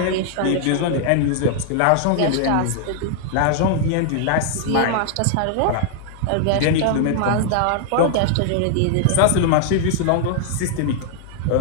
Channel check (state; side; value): different; both; correlation -0.01